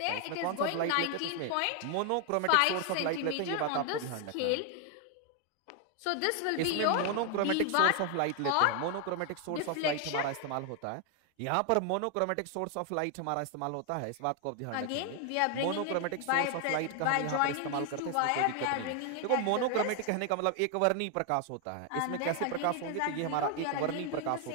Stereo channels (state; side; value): different; both; correlation 0.00